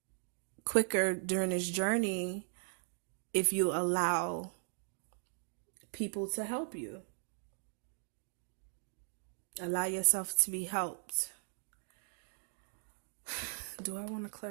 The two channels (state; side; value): silent; left; 52 dB below the other